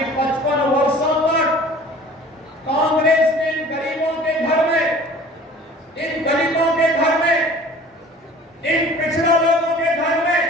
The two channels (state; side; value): normal; both; correlation 0.46